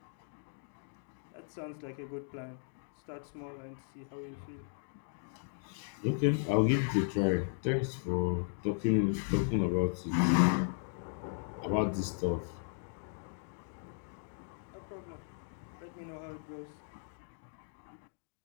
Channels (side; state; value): right; silent; digital silence